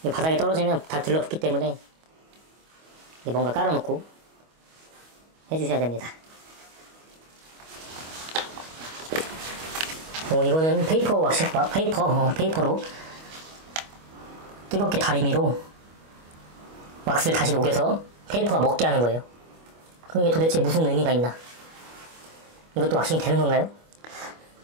이렇게 바닥에 떨어지면 다 들러붙기 때문에 뭔가 깔아놓고 해주셔야 됩니다. 이거는 페이퍼 왁싱, 페이퍼로 뜨겁게 다리미로 왁스를 다시 녹여서 페이퍼가 먹게 하는 거예요. 그게 도대체 무슨 의미가 있나? 이것도 왁싱이 되는 건가요?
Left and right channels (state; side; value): late; left; 25 ms